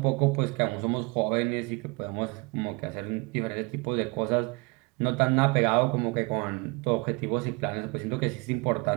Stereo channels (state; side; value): quieter; left; 27.9 dB